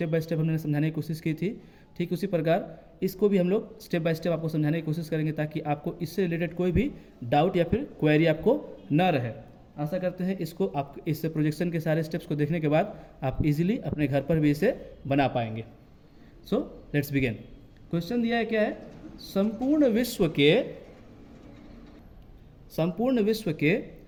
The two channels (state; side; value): identical; both; correlation 1.00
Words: बाय स्टेप हमने समझाने की कोशिश की थी, ठीक उसी प्रकार इसको भी हम लोग स्टेप बाय स्टेप आपको समझाने की कोशिश करेंगे ताकि आपको इससे रिलेटेड कोई भी डाउट या फिर क्वेरी आपको ना रहे। आशा करते हैं इसको आप इस प्रोजेक्शन के सारे स्टेप्स को देखने के बाद आप इजीली अपने घर पर भी इसे बना पाएंगे। So let's begin. क्वेश्चन दिया है क्या है, संपूर्ण विश्व के